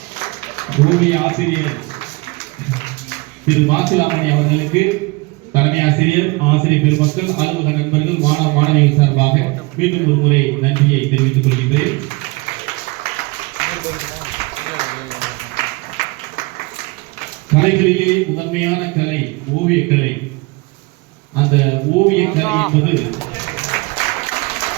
ஓவிய ஆசிரியர் திரு மாசிலாமணி அவர்களுக்கு தலைமை ஆசிரியர், ஆசிரியர் பெருமக்கள், அலுவலக நண்பர்கள், மாணவ மாணவிகள் சார்பாக மீண்டும் ஒரு முறை நன்றியை தெரிவித்துக் கொள்கின்றேன். கலைகளிலே முதன்மையான கலை ஓவியக்கலை. அந்த ஓவியக்கலை என்பது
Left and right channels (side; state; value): left; quieter; 25.3 dB